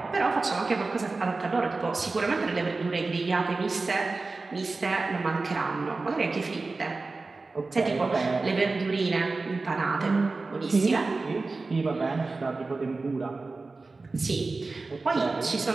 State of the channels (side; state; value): left; quieter; 3.7 dB